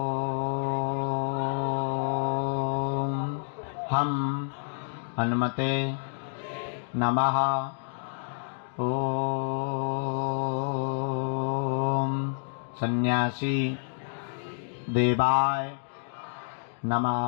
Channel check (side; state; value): right; silent; digital silence